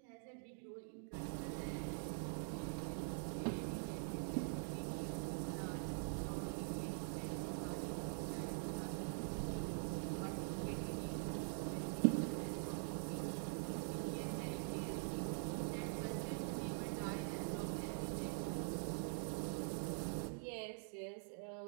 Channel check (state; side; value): silent; left; digital silence